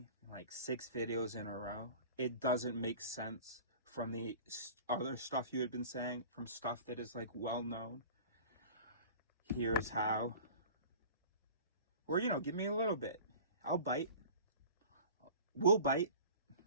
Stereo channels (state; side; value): inverted; both; correlation -0.41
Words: like 6 videos in a row. It doesn't make sense from the other stuff you had been saying, from stuff that is like well known. Here's how. Or, you know, give me a little bit. I'll bite. We'll bite.